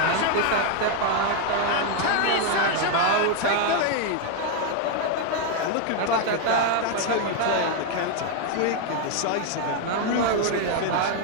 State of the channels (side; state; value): both; different; correlation 0.01